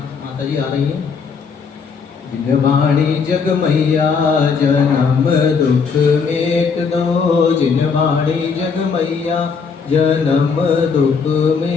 जी आ रही हैं। जिनवाणी जग मैया जन्म दुख मेट दो, जिनवाणी जग मैया जन्म दुख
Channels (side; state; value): right; quieter; 5.6 dB